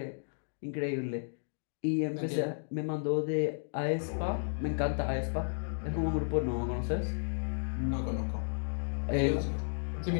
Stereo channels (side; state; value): right; silent; digital silence